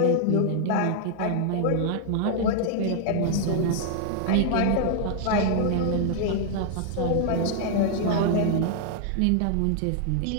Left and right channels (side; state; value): both; different; correlation 0.00